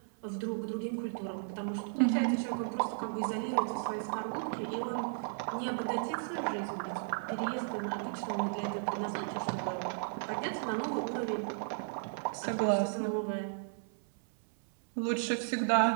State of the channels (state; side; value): silent; left; 55 dB below the other